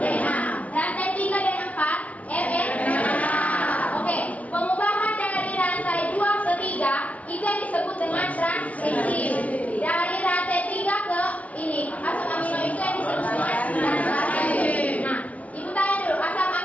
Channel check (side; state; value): right; late; 0.068 ms